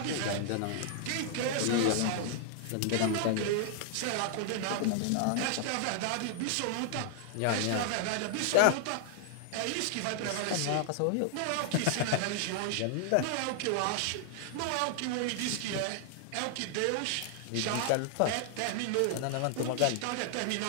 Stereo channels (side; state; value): both; different; correlation 0.00